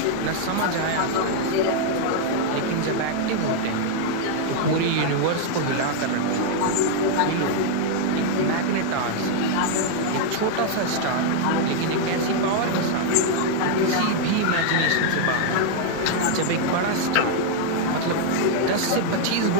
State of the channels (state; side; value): different; both; correlation 0.00